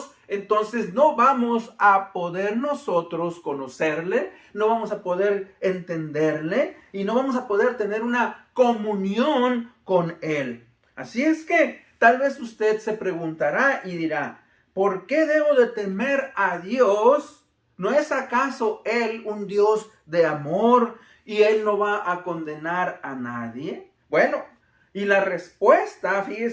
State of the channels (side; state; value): both; identical; correlation 1.00